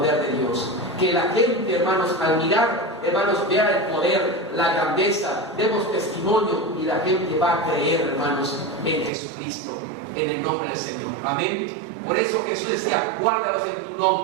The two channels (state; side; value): drops out; left; at 9.1 s